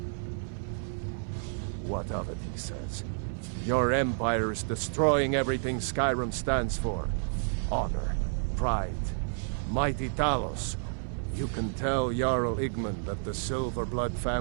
What of it, he says. Your empire is destroying everything Skyrim stands for. Honor, pride, mighty Talos. You can tell Jarl Igmund that the Silverblood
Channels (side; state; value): left; silent; 58 dB below the other